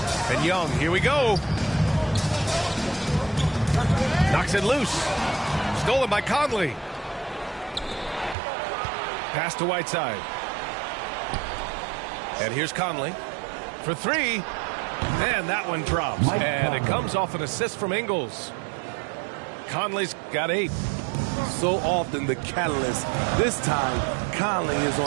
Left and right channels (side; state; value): left; drops out; at 8.3 s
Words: And Young, here we go. Knocks it loose. Stolen by Conley. Pass to Whiteside. And here's Conley for three. And that one drops. And it comes off an assist from Ingles. Conley's got 8. So often the catalyst. This time, Conley is